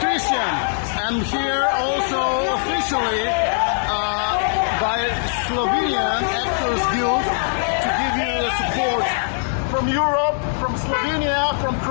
I'm here also officially by Slovenian Actors Guild to give you the support from Europe, from Slovenia, from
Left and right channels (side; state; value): right; silent; digital silence